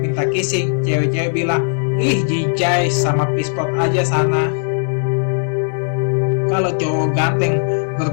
kissing, cewek-cewek bilang ih jijai sama pispot aja sana. Kalau cowok ganteng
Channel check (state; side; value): silent; right; digital silence